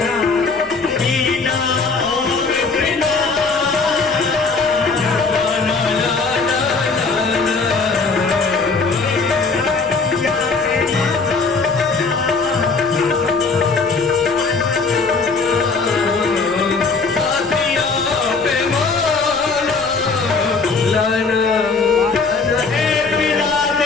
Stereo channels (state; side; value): quieter; right; 4.4 dB